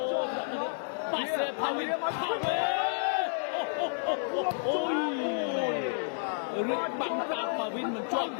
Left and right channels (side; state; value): right; silent; digital silence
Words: Danit Pase Pawin Ôi Rực bắn tạp và Vin mình chọn